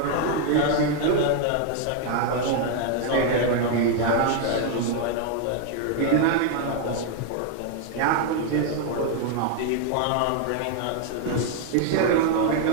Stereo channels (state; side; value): different; both; correlation 0.00